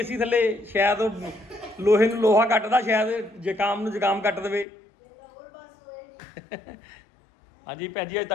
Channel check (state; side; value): drops out; right; at 4.7 s